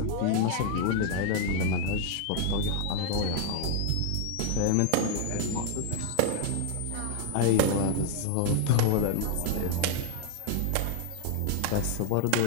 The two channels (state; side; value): different; both; correlation 0.00